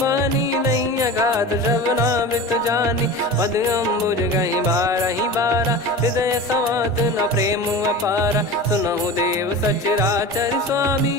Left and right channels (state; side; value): normal; both; correlation 0.32